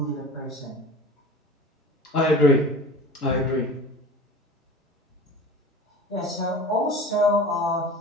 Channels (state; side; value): normal; both; correlation 0.38